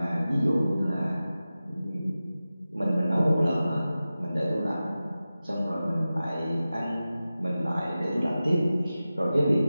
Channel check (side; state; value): both; inverted; correlation -0.95